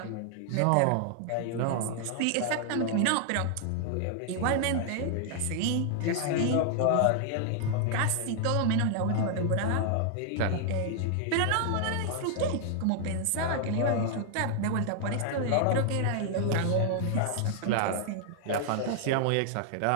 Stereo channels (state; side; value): different; both; correlation 0.00